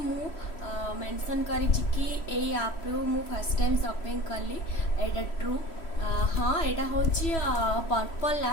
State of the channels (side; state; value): right; late; 3.1 ms